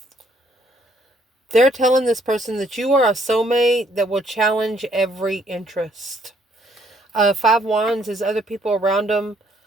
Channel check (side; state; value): both; normal; correlation 0.67